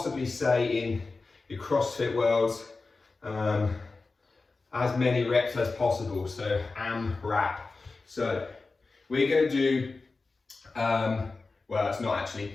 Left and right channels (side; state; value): right; quieter; 3.8 dB